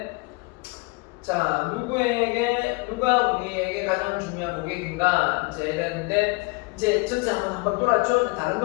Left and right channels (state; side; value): quieter; right; 27.2 dB